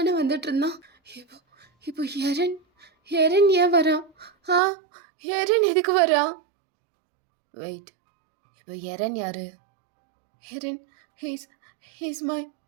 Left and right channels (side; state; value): left; drops out; at 4.6 s